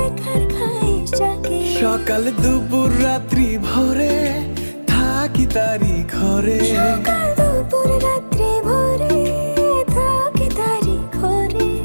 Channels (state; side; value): inverted; both; correlation -1.00